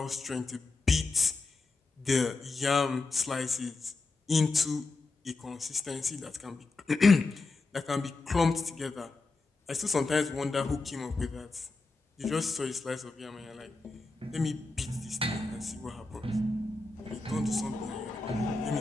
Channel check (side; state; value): right; quieter; 3.5 dB